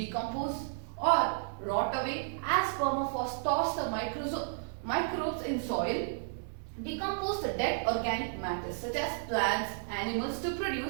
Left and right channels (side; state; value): left; silent; digital silence